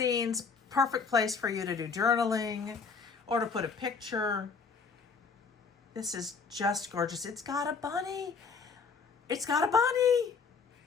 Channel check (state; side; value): quieter; right; 5.3 dB